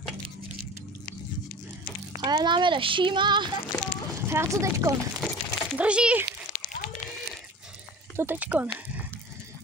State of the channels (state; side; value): normal; both; correlation 0.38